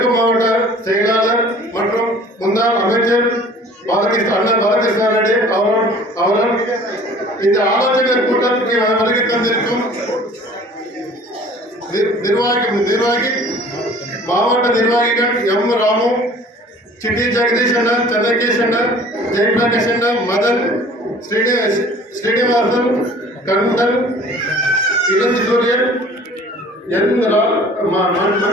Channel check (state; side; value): normal; both; correlation 0.49